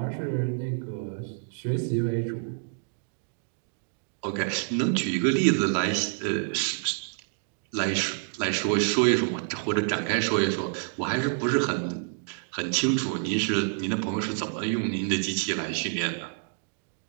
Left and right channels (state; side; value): silent; left; 59 dB below the other